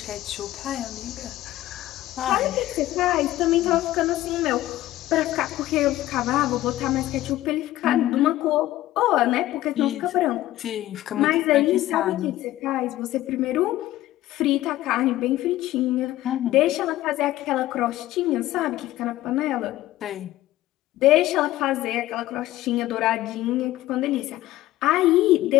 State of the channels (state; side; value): quieter; right; 15.3 dB